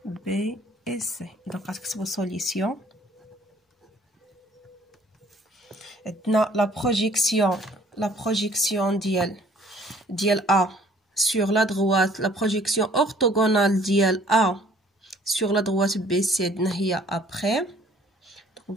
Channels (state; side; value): normal; both; correlation 0.57